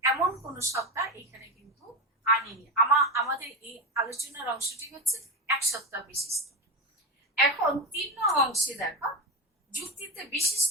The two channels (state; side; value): normal; both; correlation 0.16